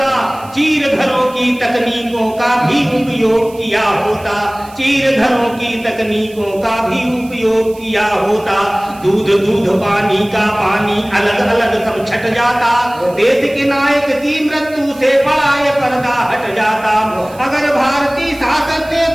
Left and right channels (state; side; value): noise; right; hiss, 23 dB below the sound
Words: चीर घरों की तकनीकों का भी उपयोग किया होता, चीर घरों की तकनीकों का भी उपयोग किया होता। दूध दूध पानी का पानी अलग अलग सब छट जाता। देश के नायक की मृत्यु से बड़ा ये पर्दा हट जाता। अगर भारतीय शासन ने